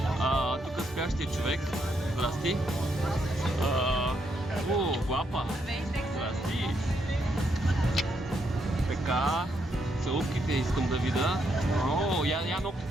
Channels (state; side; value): normal; both; correlation 0.77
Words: Тук спящия човек. Здрасти. Глапа. Здрасти. Така. Целувките искам да видя. Я